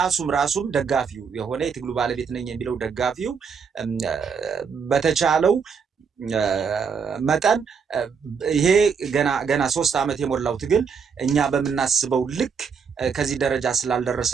ራሱም ደጋፊው የሆነ የትግሉ ባለቤት ነኝ የሚለው ደጋፊው በተቻለው መጠን ይሄ ገና 3 ዓመት የሞላው ትግል እኛ በምናስበው ልክ ከዚህ ደረጃ ስላልደረሰ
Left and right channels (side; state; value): left; quieter; 6.1 dB